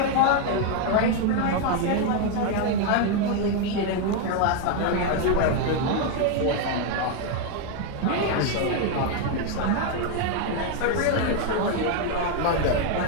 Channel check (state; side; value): different; both; correlation 0.01